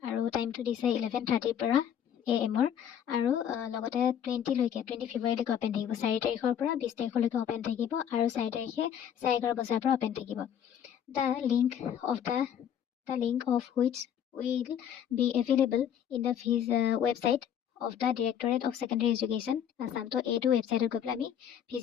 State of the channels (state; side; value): quieter; right; 9.2 dB